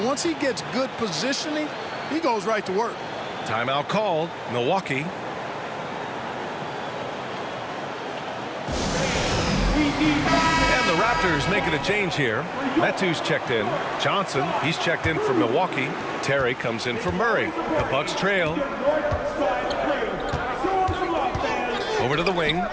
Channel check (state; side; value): identical; both; correlation 1.00